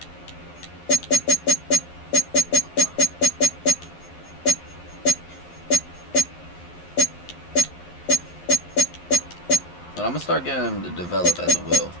But I'm gonna start getting him to develop as a will.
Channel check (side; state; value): right; late; 11 ms